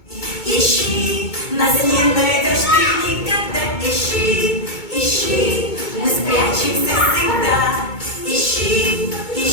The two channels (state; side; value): late; right; 2.2 ms